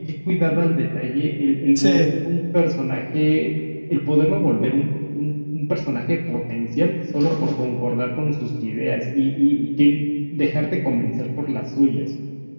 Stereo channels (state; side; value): inverted; both; correlation -1.00